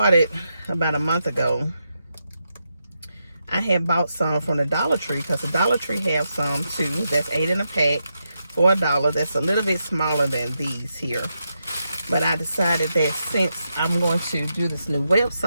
about a month ago, I had bought some from the Dollar Tree, because the Dollar Tree have some too. That's 8 in a pack for $1. That's a little bit smaller than these here. But I decided that since I'm going to do this new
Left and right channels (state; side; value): inverted; both; correlation -0.85